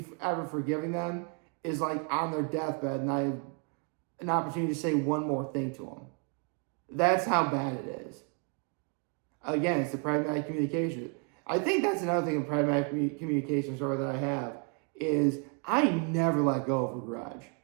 ever forgiving them is like on their deathbed and I have an opportunity to say one more thing to them. That's how bad it is. Again, it's the pragmatic communication. I think that's another thing in pragmatic communication story that I have is I never let go of a grudge.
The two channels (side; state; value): left; quieter; 36.6 dB